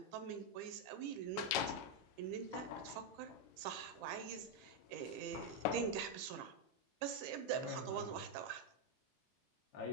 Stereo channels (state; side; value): normal; both; correlation 0.02